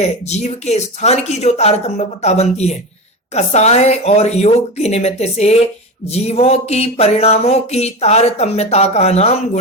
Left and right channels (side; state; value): both; normal; correlation 0.22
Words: जीव के स्थान की जो तारतम्यता बनती है, कसाय और योग के निमित्त से जीवों की परिणामों की तारतम्यता का नाम